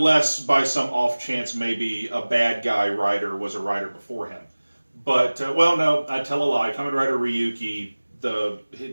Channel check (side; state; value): both; inverted; correlation -1.00